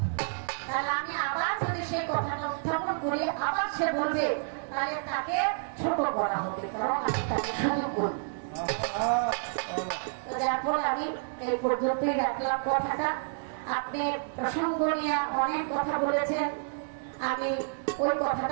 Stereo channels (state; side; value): silent; left; digital silence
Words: তাহলে আমি আবার যদি সেই কথাটা উত্থাপন করি, আবার সে বলবে, তাহলে তাকে ছোট করা হবে, কারণ আমি তাকে সুযোগ করি। তো যার ফলে আমি এই পর্যন্তই রাখলাম কথাটা। আপনি প্রসঙ্গ নিয়ে অনেক কথা বলেছেন, আমি ওই